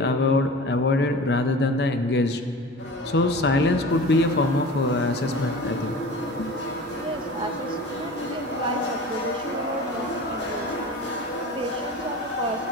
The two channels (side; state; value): both; normal; correlation 0.36